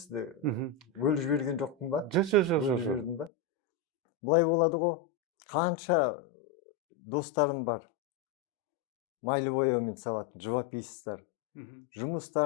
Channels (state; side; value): drops out; right; at 3.3 s